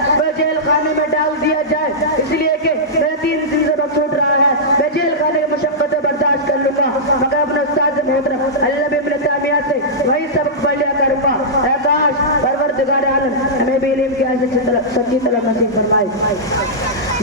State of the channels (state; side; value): normal; both; correlation -0.13